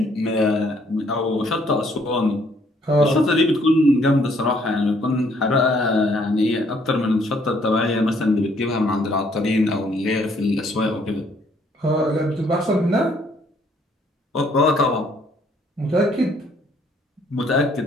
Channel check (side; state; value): both; normal; correlation 0.65